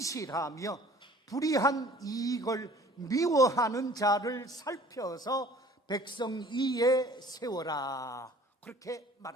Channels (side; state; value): both; normal; correlation 0.51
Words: 불의한 이익을 미워하는 자를 살펴서 백성 위에 세워라. 그렇게